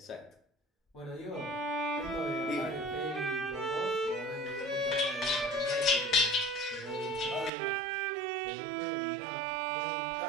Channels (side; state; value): left; drops out; at 7.5 s